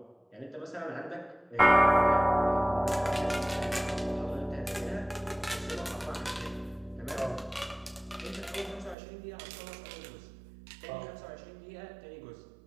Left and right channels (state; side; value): drops out; left; at 9.0 s